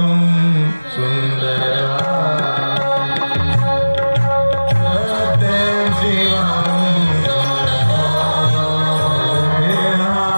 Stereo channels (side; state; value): both; inverted; correlation -1.00